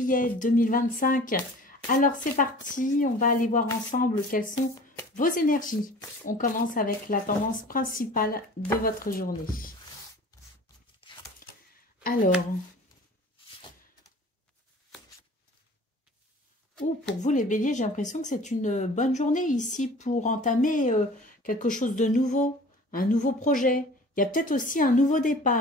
2025. Alors c'est parti, on va aller voir ensemble quelles sont vos énergies. On commence avec la tendance principale de votre journée. Alors, pour vous les Béliers, j'ai l'impression que c'est une bonne journée ici pour entamer quelque chose de nouveau, un nouveau projet. Il y a peut-être aussi un nouveau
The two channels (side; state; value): both; normal; correlation 0.44